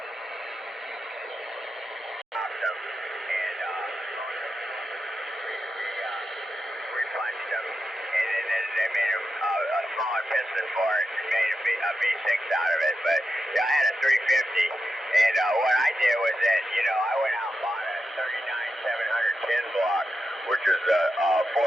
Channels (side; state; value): both; normal; correlation 0.88